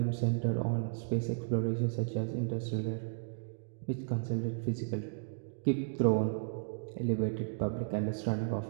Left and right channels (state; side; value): silent; left; digital silence